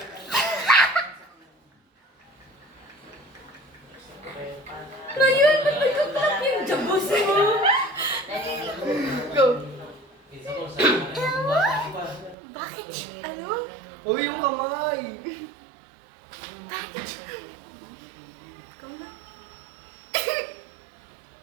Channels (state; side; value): drops out; left; at 12.4 s